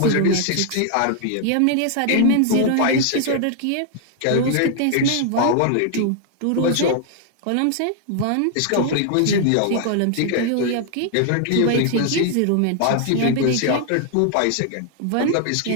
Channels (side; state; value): both; different; correlation 0.00